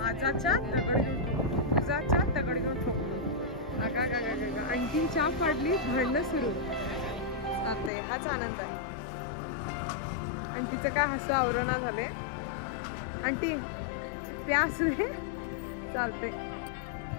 चहा दगड घेऊन ठोकतो, तुझा चहा दगड घेऊन ठोकतो. अगा आणखीन चहा पाडली, भांडणं सुरू. चालतंय, हाच आनंद आहे. आणि तिचं काय हसू आवरणा झाले. आंटी प्यास चालते.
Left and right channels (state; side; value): drops out; right; at 7.9 s